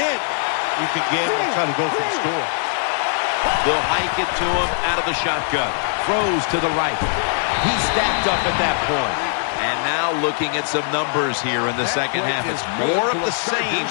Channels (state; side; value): silent; right; digital silence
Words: you can gamble and try to go for the score. They'll hike it to him out of the shotgun. Throws to the right. He's stacked up at that point. And now looking at some numbers here in the second half. It's more of the same